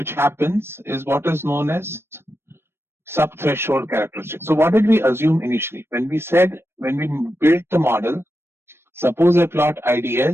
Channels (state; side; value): late; left; 0.12 ms